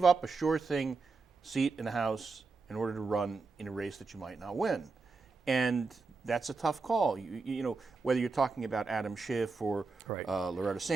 up a sure thing seat in the House in order to run in a race that you might not win? And that's a tough call. You know, whether you're talking about Adam Schiff or Right. Loretta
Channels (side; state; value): left; quieter; 4.2 dB